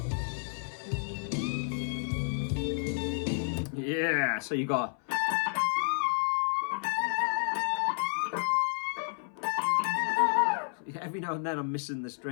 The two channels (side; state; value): right; silent; 57 dB below the other